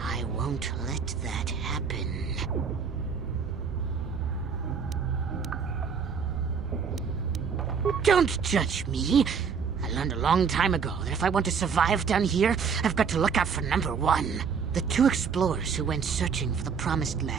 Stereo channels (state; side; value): quieter; left; 6.2 dB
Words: won't let that happen. Don't judge me. I learned a long time ago that if I want to survive down here, I've got to look out for number one. The two explorers who went searching for the Promised